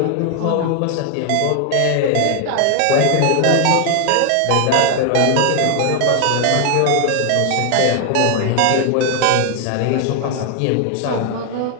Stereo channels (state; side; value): different; both; correlation 0.00